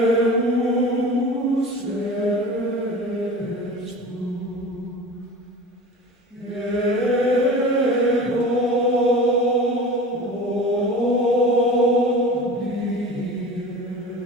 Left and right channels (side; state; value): both; normal; correlation 0.36